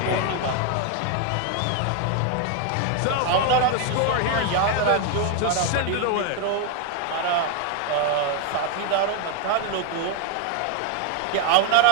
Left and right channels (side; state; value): both; different; correlation 0.01